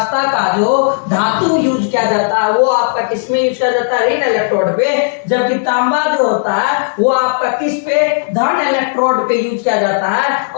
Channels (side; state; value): right; silent; digital silence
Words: का जो धातु यूज किया जाता है वो आपका किसमें यूज किया जाता है, ऋण इलेक्ट्रोड पे। जबकि तांबा जो होता है वो आपका किस पे, धन इलेक्ट्रोड पे यूज किया जाता है,